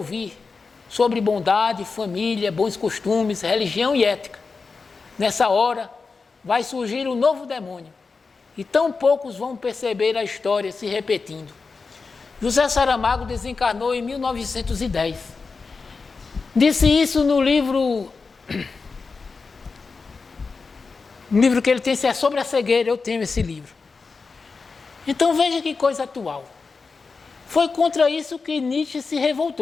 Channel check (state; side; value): quieter; right; 4.5 dB